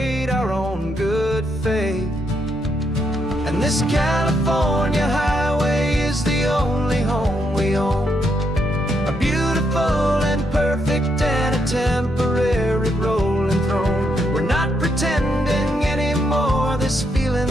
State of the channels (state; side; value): normal; both; correlation 0.78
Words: our own good faith. And this California highway is the only home we own, a beautiful and perfect and a temporary road.